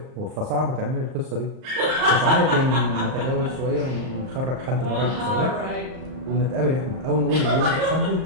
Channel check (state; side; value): late; left; 38 ms